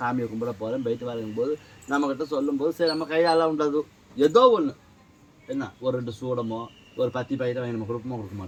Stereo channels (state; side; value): identical; both; correlation 1.00